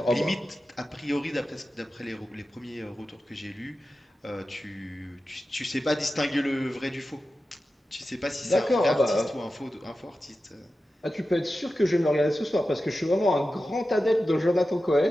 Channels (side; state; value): both; normal; correlation 0.93